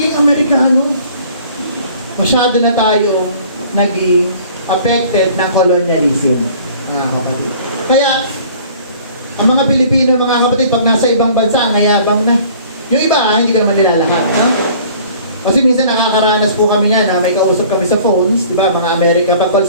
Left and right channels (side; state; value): both; inverted; correlation -0.51